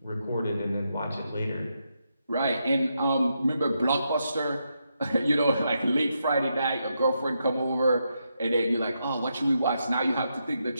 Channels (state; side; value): inverted; both; correlation -0.82